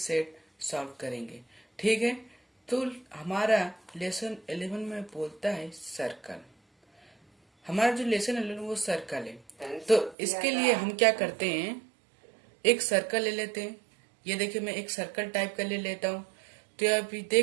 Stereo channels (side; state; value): left; drops out; at 10.2 s